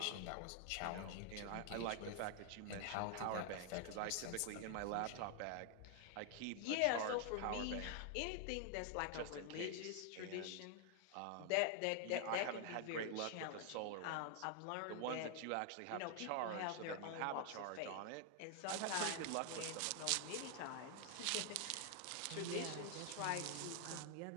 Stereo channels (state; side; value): different; both; correlation 0.00